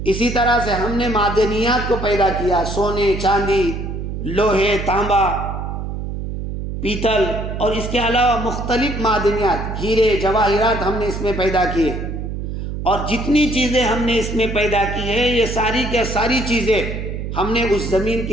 اسی طرح سے ہم نے معدنیات کو پیدا کیا، سونے، چاندی، لوہے، تانبا، پیتل، اور اس کے علاوہ مختلف معدنیات، ہیرے، جواہرات ہم نے اس میں پیدا کیے، اور جتنی چیزیں ہم نے اس میں پیدا کی ہیں یہ ساری کے ساری چیزیں ہم نے اس زمین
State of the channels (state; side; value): noise; right; hum, 5 dB below the sound